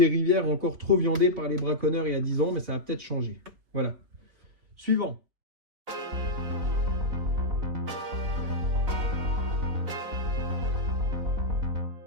rivières encore trop viandées par les braconneurs il y a 10 ans, mais ça va peut-être changer. Voilà. Suivant.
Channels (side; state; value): left; late; 4.0 ms